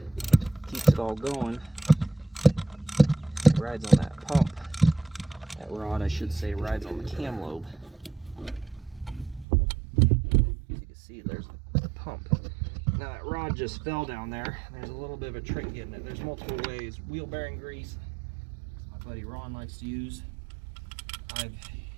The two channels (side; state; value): left; drops out; at 9.5 s